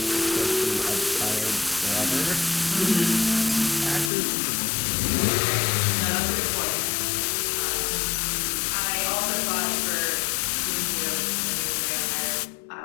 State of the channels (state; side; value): drops out; right; at 4.1 s